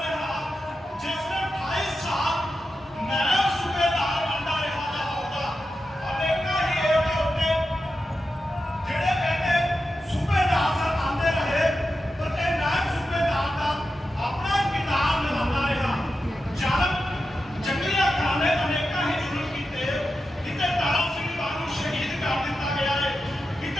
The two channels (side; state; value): both; normal; correlation 0.90